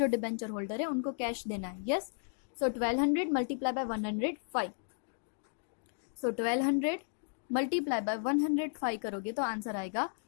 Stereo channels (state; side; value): silent; right; 55 dB below the other